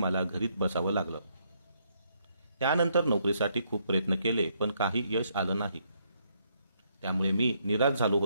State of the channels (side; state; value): both; inverted; correlation -0.73